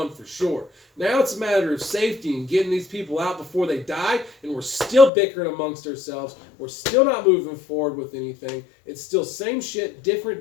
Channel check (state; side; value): drops out; right; at 5.1 s